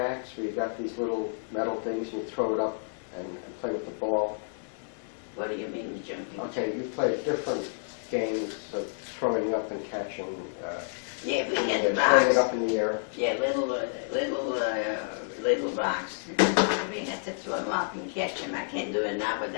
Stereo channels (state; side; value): silent; right; digital silence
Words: where you got these little metal things and you throw it up and play with the ball? What do you mean jumping? Okay, you played different games of throwing up and catching, Yeah, we had throwing it rocks. up in the air. Yeah, little rocks. We had to throw them up and catch them. I can't do it now, but